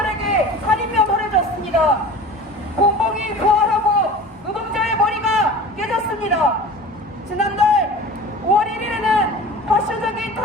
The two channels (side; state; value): both; normal; correlation 0.39